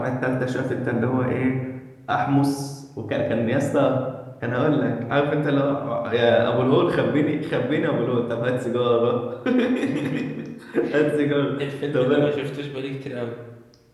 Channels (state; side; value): identical; both; correlation 1.00